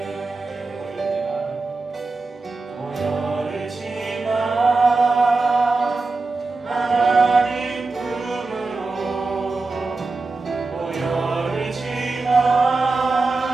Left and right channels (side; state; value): left; quieter; 3.7 dB